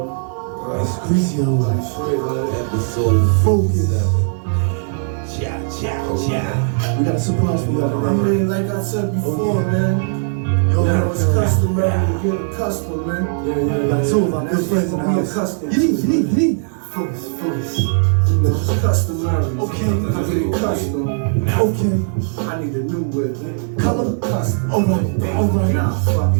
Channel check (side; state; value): left; silent; digital silence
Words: It's crazy Episode focus. Cha. We got a surprise for y'all I tonight. mean, like I said before, man. Now it's customary to get accustomed, man. We got two of our good friends in the house. Accustomed. Focus. You know, it's customary. Okay. I get accustomed. Okay. I need a new whip. Color. Custom. Alright. Nah, fuck